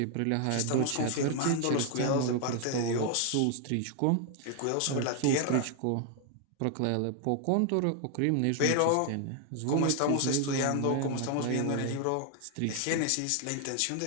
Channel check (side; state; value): both; different; correlation 0.00